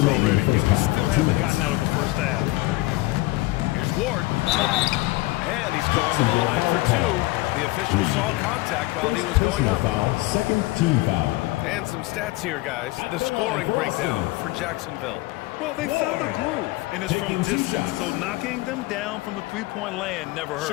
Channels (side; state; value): right; quieter; 20.2 dB